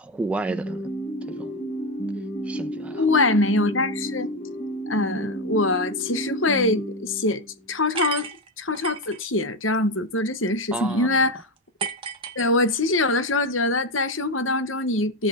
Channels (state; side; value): normal; both; correlation 0.12